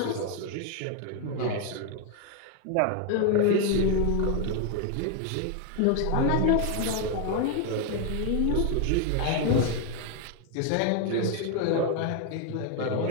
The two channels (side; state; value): both; different; correlation 0.01